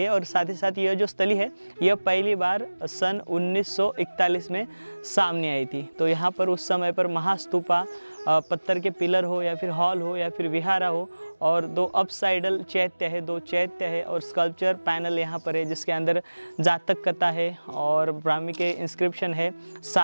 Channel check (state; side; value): inverted; both; correlation -1.00